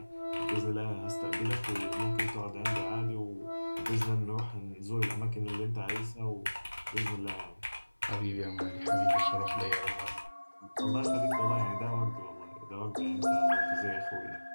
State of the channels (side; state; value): both; inverted; correlation -1.00